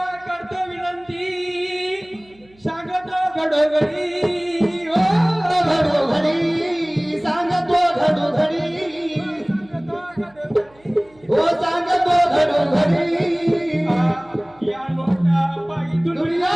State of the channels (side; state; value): right; noise; hum, 30 dB below the sound